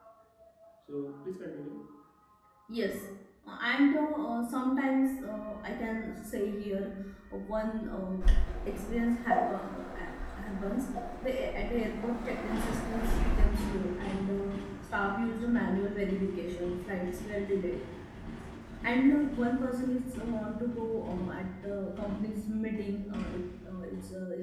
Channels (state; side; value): identical; both; correlation 1.00